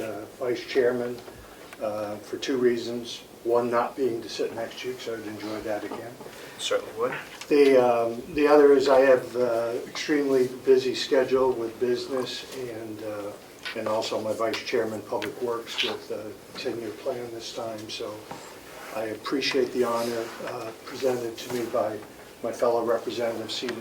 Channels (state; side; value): identical; both; correlation 1.00